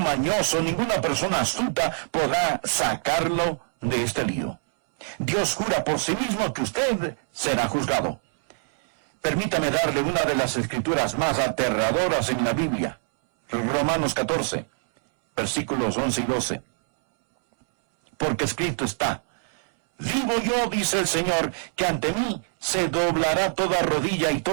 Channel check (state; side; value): silent; left; 62 dB below the other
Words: ninguna persona astuta podrá sacarlo de este lío. Dios jura por sí mismo que usted será juzgado. Permítame darle una de las escrituras más aterradoras en la Biblia. Romanos 14, versículos 11 y 12. Porque escrito está, vivo yo, dice el Señor, que ante mí se doblará toda rodilla y